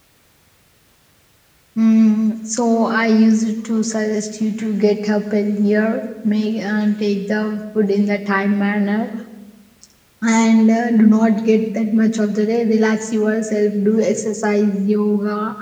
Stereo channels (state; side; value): identical; both; correlation 1.00